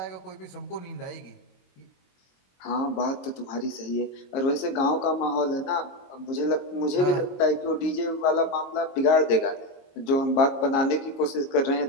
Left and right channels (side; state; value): right; late; 22 ms